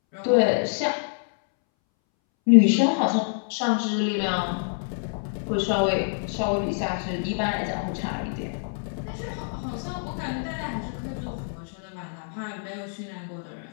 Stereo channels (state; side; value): silent; right; 61 dB below the other